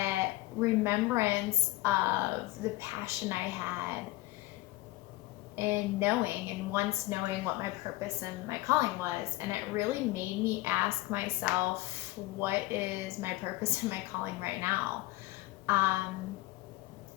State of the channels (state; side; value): quieter; right; 18.5 dB